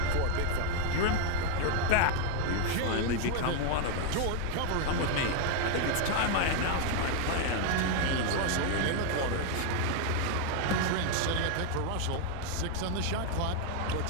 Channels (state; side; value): different; both; correlation 0.00